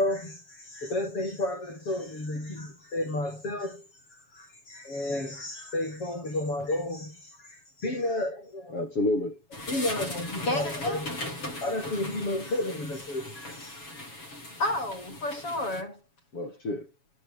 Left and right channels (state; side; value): late; right; 7.2 ms